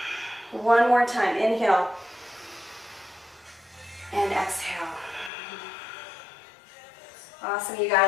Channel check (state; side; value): drops out; right; at 5.3 s